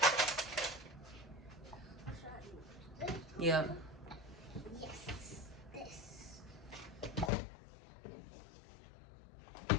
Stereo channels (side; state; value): right; drops out; at 7.3 s